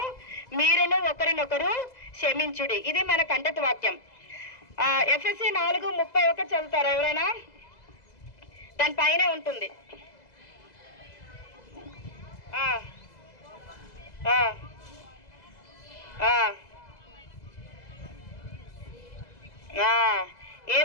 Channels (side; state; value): right; late; 2.0 ms